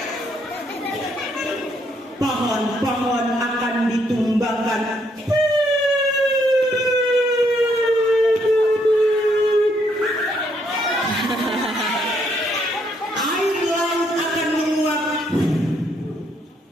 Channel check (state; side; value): normal; both; correlation 0.72